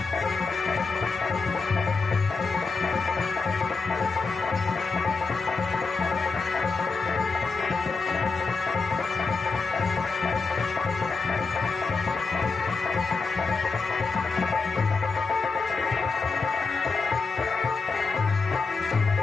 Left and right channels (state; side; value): quieter; right; 4.4 dB